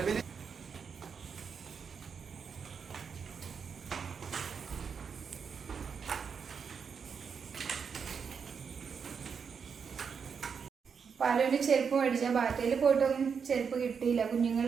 പാലുവിന് ചെരുപ്പ് മേടിച്ചാൽ ബാറ്റയിൽ പോയിട്ടൊന്നും ചെരുപ്പ് കിട്ടിയില്ല.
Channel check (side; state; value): left; quieter; 6.3 dB